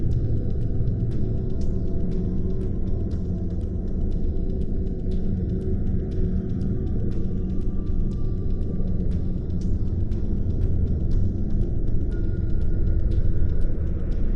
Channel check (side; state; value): both; identical; correlation 1.00